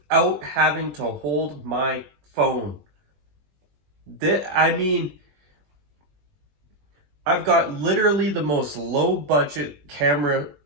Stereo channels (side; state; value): left; late; 20 ms